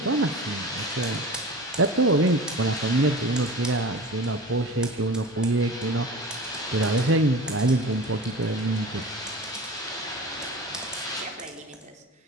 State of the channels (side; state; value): both; normal; correlation 0.35